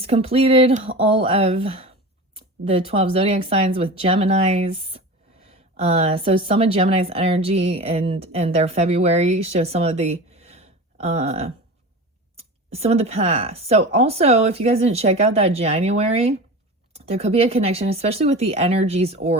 completed all of the 12 zodiac signs with Geminis. So some of Gemini's energy and their February show some of the past. So also, if you guys didn't check out that January, there could be a connection, especially with the energies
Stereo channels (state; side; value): normal; both; correlation 0.31